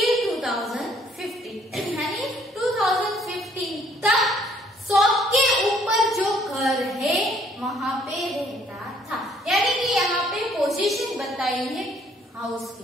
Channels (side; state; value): both; normal; correlation 0.63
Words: 2015 यानी 2015 तक शॉप के ऊपर जो घर है वहां पे रहता था। यानी कि यहाँ पे पोजीशन बताई है हाउस